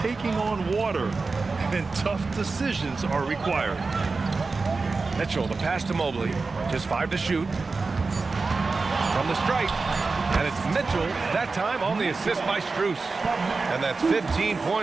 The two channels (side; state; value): left; quieter; 4.1 dB